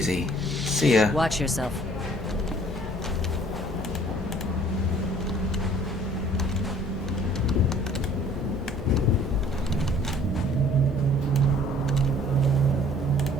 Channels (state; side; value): normal; both; correlation 0.55